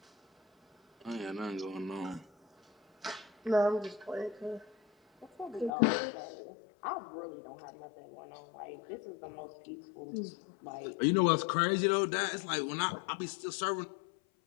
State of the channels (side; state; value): right; drops out; at 5.7 s